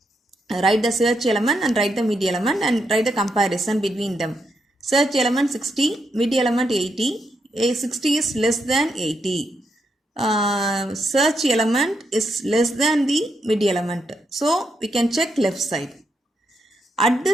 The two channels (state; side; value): normal; both; correlation 0.81